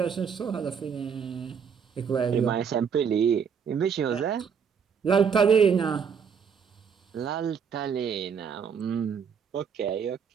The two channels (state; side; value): quieter; left; 6.8 dB